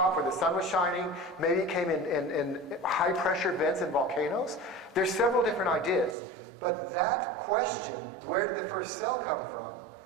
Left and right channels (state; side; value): drops out; left; at 6.2 s